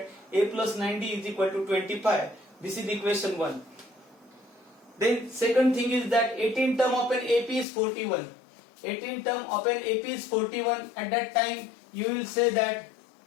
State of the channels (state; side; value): drops out; right; at 7.7 s